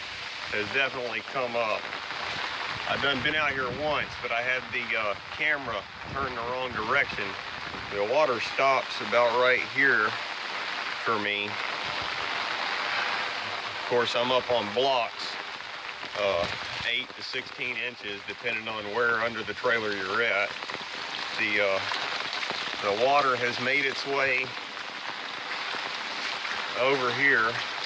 has definitely come up. I've been out here once, but I had the camera turned the wrong direction. The water stops about right here for me. Of course, I'm up on blocks, 8 to 16 inches, depending on where under the trailer you're at. The water has made its way over here.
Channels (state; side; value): identical; both; correlation 1.00